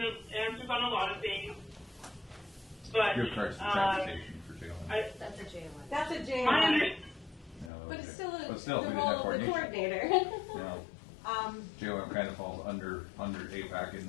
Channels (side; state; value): right; drops out; at 7.7 s